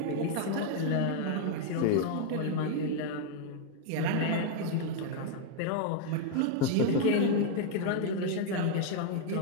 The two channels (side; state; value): both; different; correlation 0.00